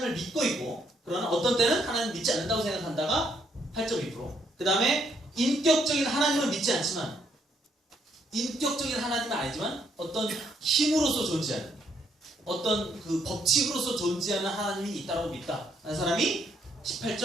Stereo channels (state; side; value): normal; both; correlation 0.72